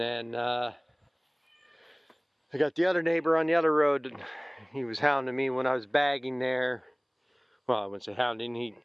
I got the other neighbor on the other road. He was hounding me when I was bagging there. Well, I wouldn't say hounding. He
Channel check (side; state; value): both; identical; correlation 1.00